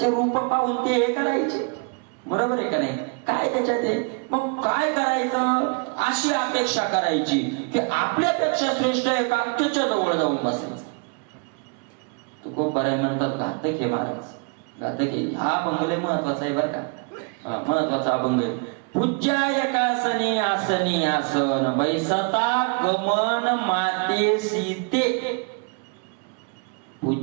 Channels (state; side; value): quieter; left; 35.9 dB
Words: रूप पाहून ते हे करायचे. बरोबर आहे का नाही? काय त्याच्यात आहे? मग काय करायचं? अशी अपेक्षा करायची की आपल्यापेक्षा श्रेष्ठ आहे का, त्याच्या जवळ जाऊन बसायचं. तो खूप बरं म्हणतात घातक आहे महाराज, घातक आहे. हा बंगले महत्वाचा आहे बरं का, महत्वाचा अभंग आहे. पूज्या एकासनी आसनी आसन, बैसता गमन माते सीते.